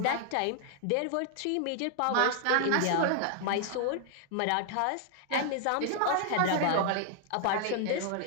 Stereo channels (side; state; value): both; different; correlation 0.00